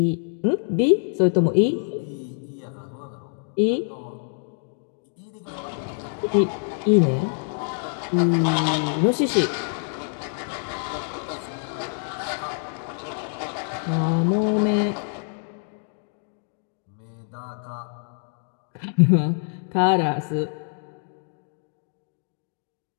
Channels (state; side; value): silent; right; 61 dB below the other